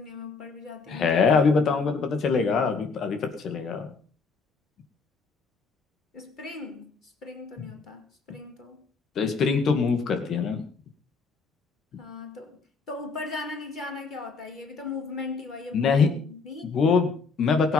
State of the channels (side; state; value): right; quieter; 4.7 dB